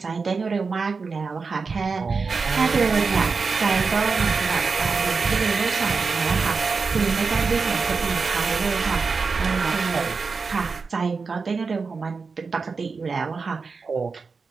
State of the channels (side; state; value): left; quieter; 4.7 dB